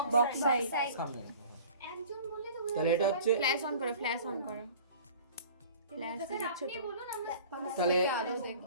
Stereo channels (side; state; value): both; inverted; correlation -0.45